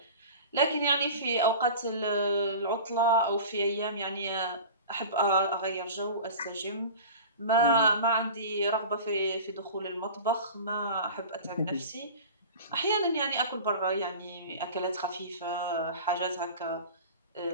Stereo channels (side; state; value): both; inverted; correlation -0.36